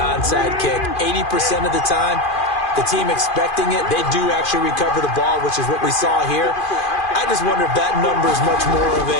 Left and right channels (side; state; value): right; late; 2.5 ms